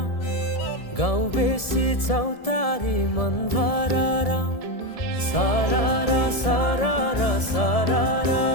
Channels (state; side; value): late; right; 1.7 ms